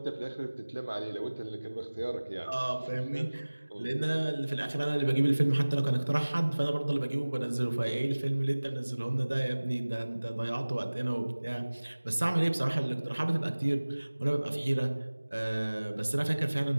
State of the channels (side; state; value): both; inverted; correlation -1.00